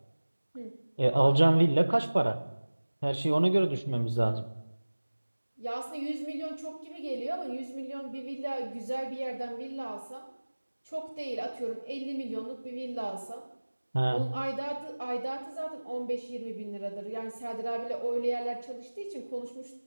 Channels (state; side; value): inverted; both; correlation -1.00